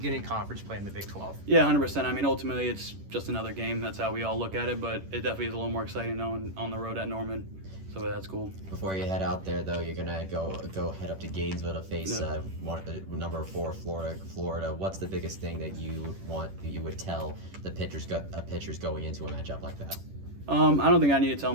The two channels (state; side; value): late; left; 10 ms